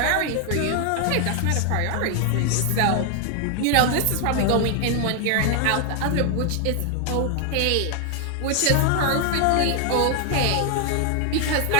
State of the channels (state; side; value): different; both; correlation 0.00